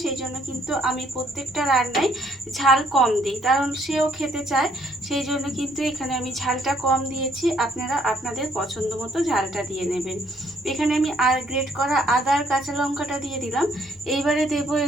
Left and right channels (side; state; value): both; normal; correlation 0.67